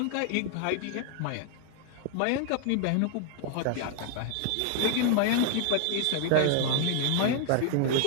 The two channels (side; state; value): both; different; correlation 0.00